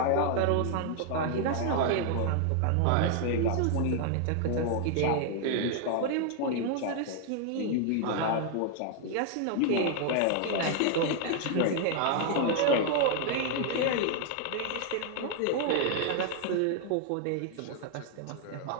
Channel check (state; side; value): different; both; correlation 0.00